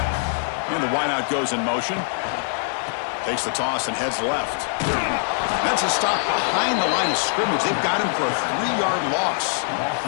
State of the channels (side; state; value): right; silent; digital silence